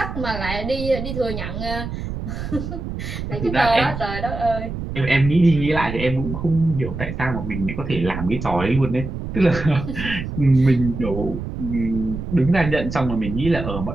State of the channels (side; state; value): right; noise; rumble, 6 dB below the sound